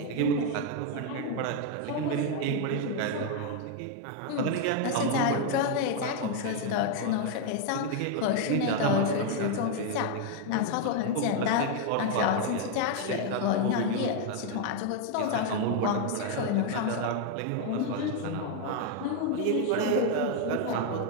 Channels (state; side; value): different; both; correlation 0.01